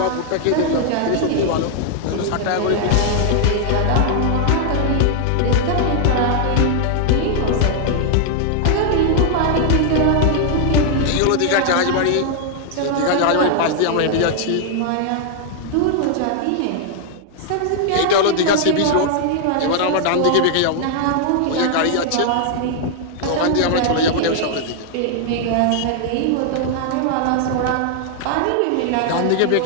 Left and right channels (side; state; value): both; different; correlation 0.00